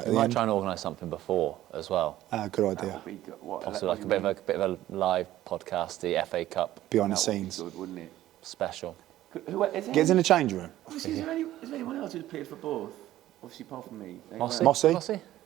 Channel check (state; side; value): quieter; left; 14.1 dB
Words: We the might end. try and organise something before as well. Good idea. Possibly like a bit of a live podcast, the FA Cup Behind the scenes. Good, wouldn't it? special. Who is Gets in the change room. Is there anyone else who's played for both? Obviously, apart from me. Mossy? Mossy?